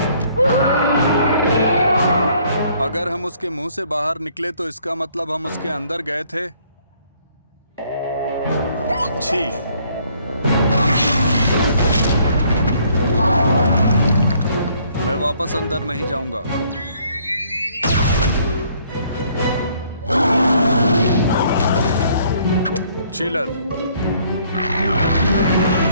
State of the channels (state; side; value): inverted; both; correlation -0.63